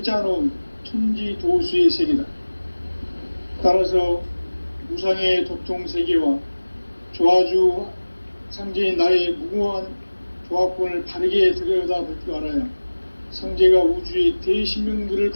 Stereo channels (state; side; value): inverted; both; correlation -1.00